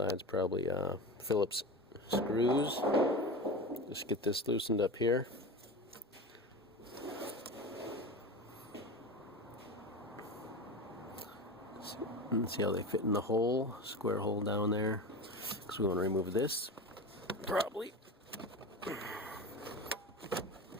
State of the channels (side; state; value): both; normal; correlation 0.28